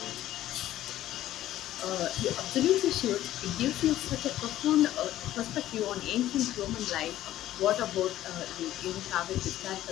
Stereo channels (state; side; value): quieter; right; 13.7 dB